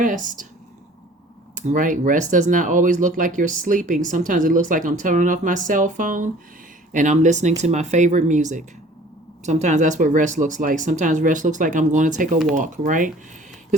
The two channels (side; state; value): both; normal; correlation 0.50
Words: Right? Rest does not always look like you're sleeping. Sometimes it looks like I'm turning off my cell phone and I'm listening to my favorite music. Sometimes that's what rest looks like. Sometimes rest looks like I'm going to take a walk, right?